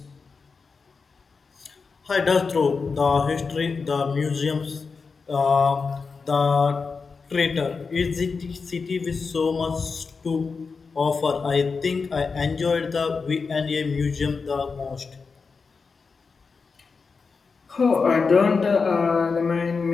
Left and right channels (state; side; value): quieter; right; 4.8 dB